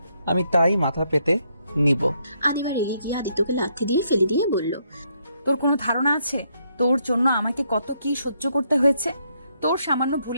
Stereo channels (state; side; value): inverted; both; correlation -0.75